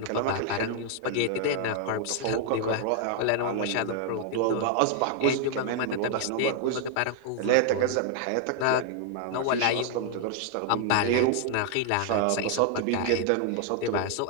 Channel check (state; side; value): different; both; correlation 0.00